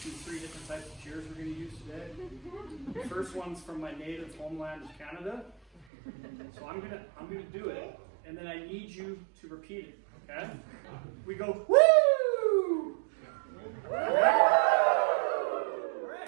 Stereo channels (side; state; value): left; drops out; at 5.9 s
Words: 3 different types of cheers we're going to use today. The first one's from my native homeland of Canada. So I'm gonna do it, and then I need you to repeat it. Okay? We go woo!